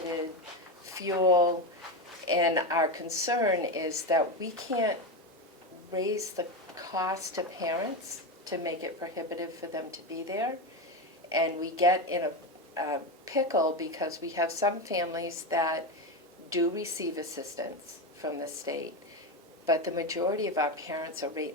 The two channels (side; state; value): both; normal; correlation 0.15